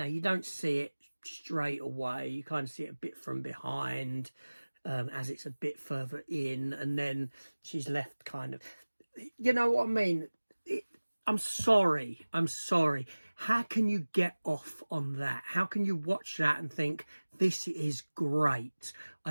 you don't see it straight away. You kind of see it a bit from behind, as it's a bit further in, and then she's left kind of, you know what I mean? I'm sorry. How can you get off on that? How can you watch that and think, this is great? I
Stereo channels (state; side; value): inverted; both; correlation -1.00